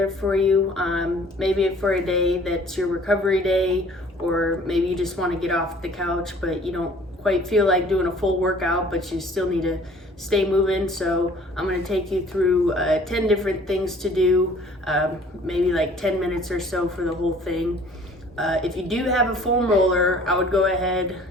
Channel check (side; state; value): both; normal; correlation 0.53